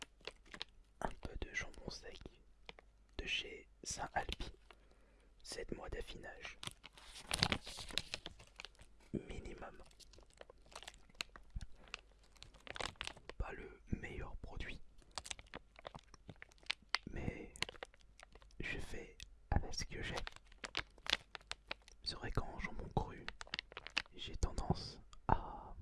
un peu de jambon sec de chez Saint-Alpi, 7 mois d'affinage minimum. Pas le meilleur produit, mais je fais avec ce que j'ai. C'est vrai qu'en jambon cru, j'ai tendance à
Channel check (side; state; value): both; identical; correlation 1.00